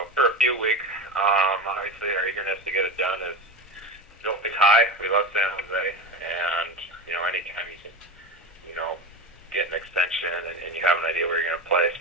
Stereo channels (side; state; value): both; normal; correlation 0.23